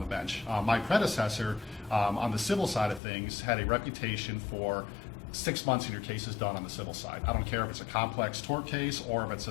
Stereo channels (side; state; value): right; drops out; at 3.0 s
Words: bench. My predecessor on the civil side of things had a reputation for 6 months and your case is done on the civil side. I don't care if it's a complex tort case or if it's